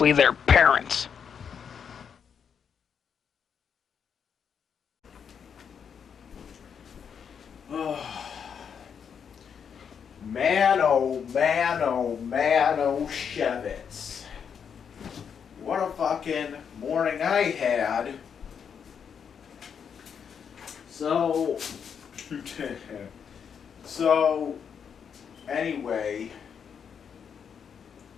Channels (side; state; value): right; quieter; 7.2 dB